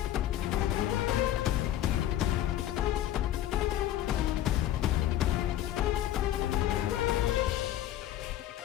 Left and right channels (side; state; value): right; quieter; 12.6 dB